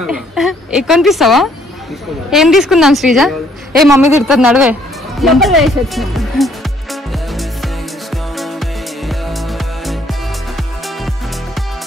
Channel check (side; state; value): both; normal; correlation 0.65